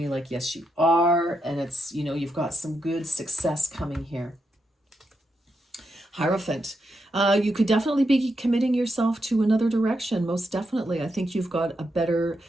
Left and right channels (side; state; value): both; normal; correlation 0.83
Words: like, yes, you are. And it's, you've got some good success coming here. Hierophant. You could definitely be committing yourself to another direction, most definitely. I think you've got a better